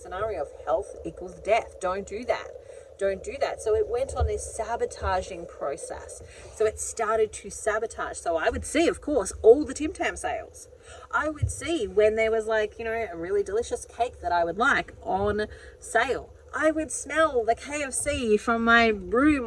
scenario of health equals death. Don't do that. Don't do that. So it went on this sabotaging process. So it started to sabotage. So I would see, of course, all the Tim Tam sales. I would see when there was like, you know, a really delicious cake that I would like on sale. I would smell the KFC from my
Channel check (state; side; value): identical; both; correlation 1.00